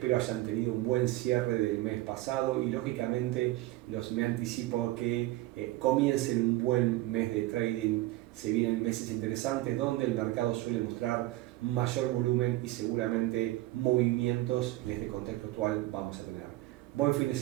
hayan tenido un buen cierre del mes pasado y lógicamente me anticipo a que comiencen un buen mes de trading. Se vienen meses interesantes donde el mercado suele mostrar mayor volumen y seguramente movimientos en este contexto actual vamos a tener. Buen fin de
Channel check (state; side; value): quieter; left; 17.4 dB